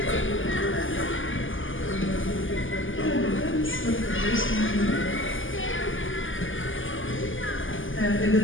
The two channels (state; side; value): late; right; 0.58 ms